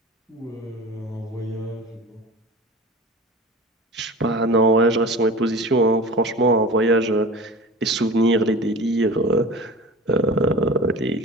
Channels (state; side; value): normal; both; correlation 0.36